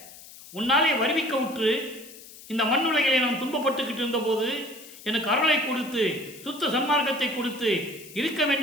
உன்னாலே வருவிக்க உற்று இந்த மண்ணுலகிலே நான் துன்பப்பட்டுக்கிட்டு இருந்த போது எனக்கு அருளை கொடுத்து சுத்த சன்மார்க்கத்தை கொடுத்து இருக்க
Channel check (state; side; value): noise; left; hiss, 18 dB below the sound